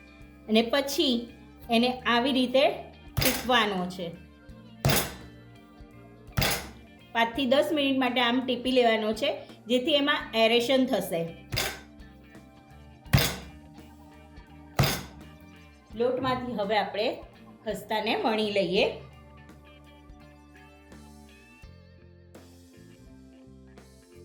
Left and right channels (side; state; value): both; identical; correlation 1.00